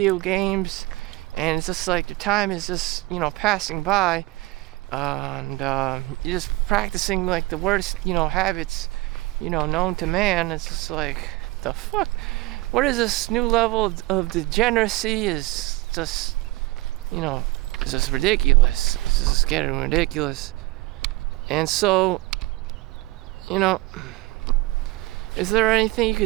games, and it's just like your time is just passing by, and you're just practicing like the worst habits known to man. It's just like, the fuck, what is this new level of degeneracy? Is just it's just ridiculous. It's just getting ridiculous. And so is there anything you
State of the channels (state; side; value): quieter; left; 20.5 dB